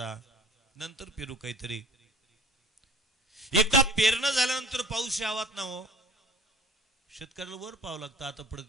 नंतर पेरू काहीतरी. एकदा पेरणं झाल्यानंतर पाऊस यावात ना हो, शेतकऱ्याला वर पाहावं लागतं.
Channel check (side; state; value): both; normal; correlation 0.48